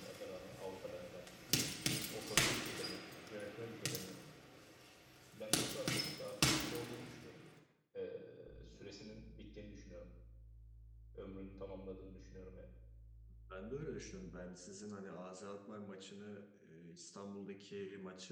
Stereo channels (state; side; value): identical; both; correlation 1.00